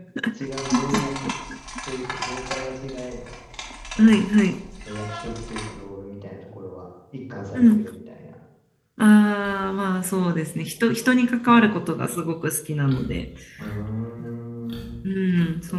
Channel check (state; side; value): identical; both; correlation 1.00